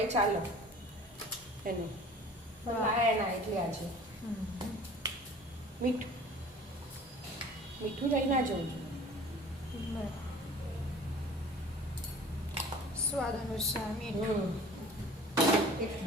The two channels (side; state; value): both; normal; correlation 0.45